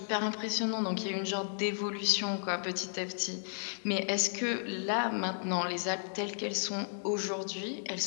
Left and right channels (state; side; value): silent; right; digital silence